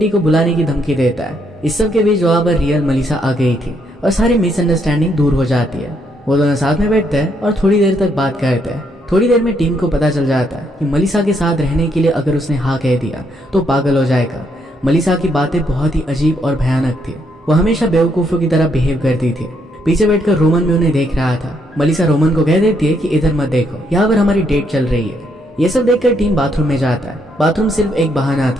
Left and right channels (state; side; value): normal; both; correlation 0.74